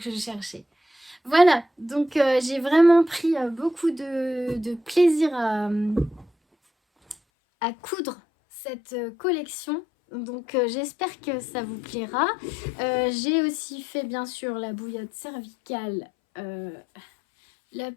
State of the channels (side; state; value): right; drops out; at 7.2 s